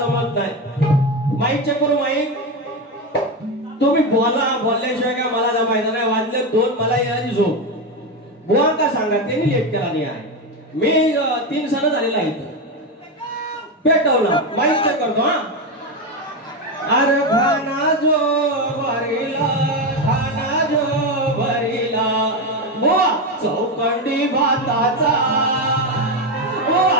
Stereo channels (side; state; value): both; normal; correlation 0.13